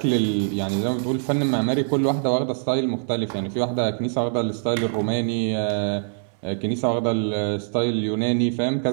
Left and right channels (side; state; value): left; silent; 63 dB below the other